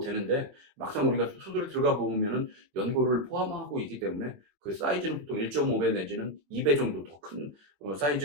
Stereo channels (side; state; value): left; late; 22 ms